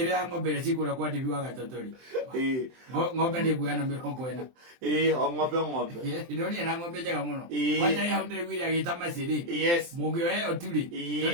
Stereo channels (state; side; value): late; left; 23 ms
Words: ng'ombe cikuria kwa ndibi wa gatotori ng'ombe ni guana 40 o ng'ombe ndonia na ng'ombe njega muno wacha ya ndegwira agita maciri mungioe oturi